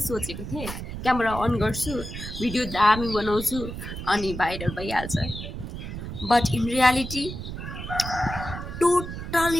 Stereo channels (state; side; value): noise; right; rumble, 8 dB below the sound